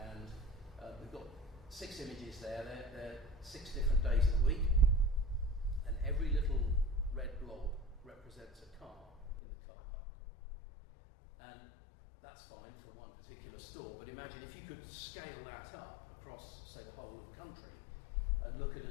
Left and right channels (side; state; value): right; drops out; at 9.4 s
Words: we've got 6 images there. They're 6 different days of the week, and every little red blob represents a car in the car park. And that's fine for one particular store, but imagine if you could scale that up across, say, the whole of the country and look at